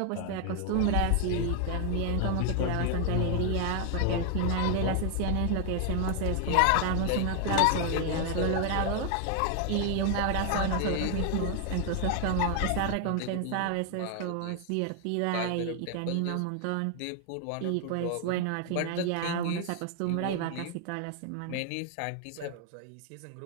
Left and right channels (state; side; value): different; both; correlation 0.00